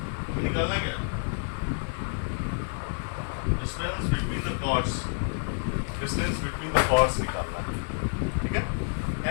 हमें निकालना है क्या, डिस्टेंस बिटवीन द कॉर्ड्स निकालना है, ठीक है।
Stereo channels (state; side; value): silent; right; digital silence